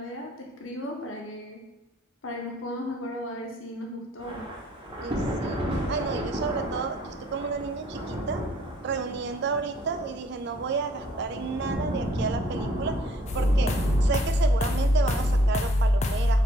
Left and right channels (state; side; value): normal; both; correlation 0.61